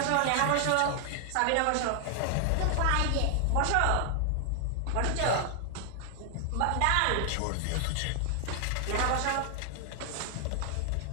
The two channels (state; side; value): different; both; correlation 0.00